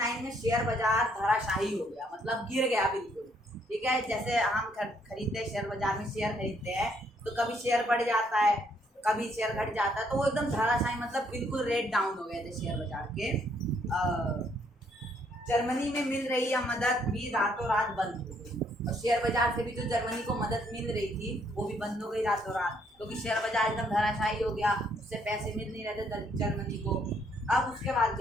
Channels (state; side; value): normal; both; correlation 0.69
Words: में शेयर बाजार धराशायी हो गया, मतलब गिर गया बिल्कुल, ठीक है। जैसे हम खरीदते हैं शेयर बाजार में, शेयर खरीदते हैं तो कभी शेयर बढ़ जाता है, कभी शेयर घट जाता है, तो वो एकदम धराशायी, मतलब बिल्कुल रेट डाउन हो गए थे शेयर बाजार के। जर्मनी में मिल रही यह मदद भी रातों रात बंद हो गई, और शेयर बाजार से भी जो जर्मनी को मदद मिल रही थी वो भी बंद हो गई रातों रात, क्योंकि शेयर बाजार एकदम धराशायी हो गया, उससे पैसे मिल नहीं रहे थे जर्मनी को। अब उसके बाद